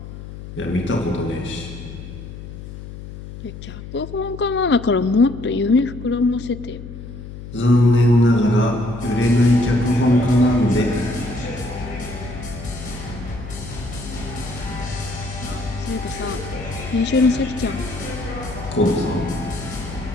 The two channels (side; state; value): left; noise; hum, 12 dB below the sound